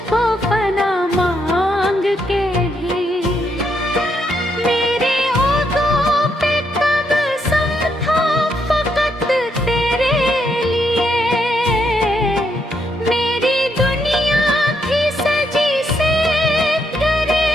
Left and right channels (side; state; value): both; normal; correlation 0.77